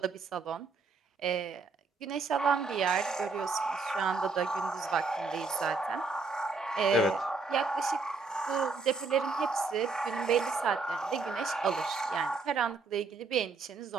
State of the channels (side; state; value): left; quieter; 4.2 dB